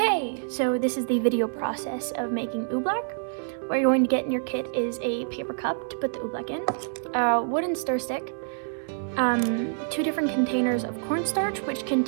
so this is the video process of making oobleck. What you're going to get in your kit is a paper cup to put the oobleck in, a wooden stir stick, 2 different containers of cornstarch, which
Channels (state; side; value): silent; left; 60 dB below the other